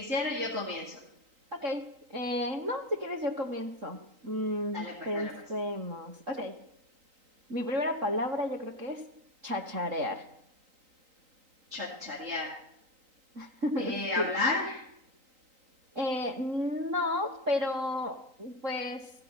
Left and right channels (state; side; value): late; left; 3.9 ms